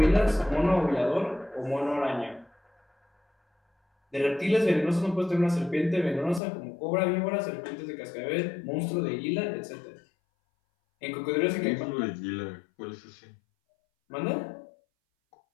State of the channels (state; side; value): drops out; right; at 6.4 s